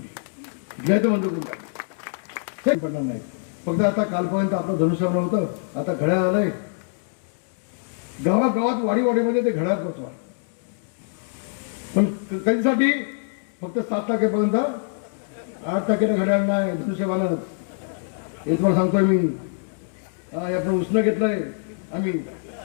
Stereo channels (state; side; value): silent; right; digital silence